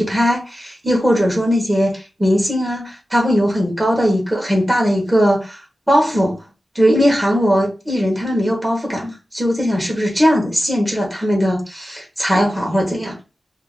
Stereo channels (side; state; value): both; normal; correlation 0.93